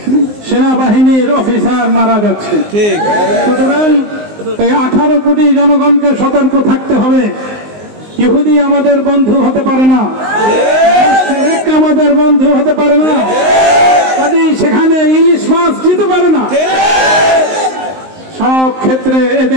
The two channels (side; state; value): left; late; 19 ms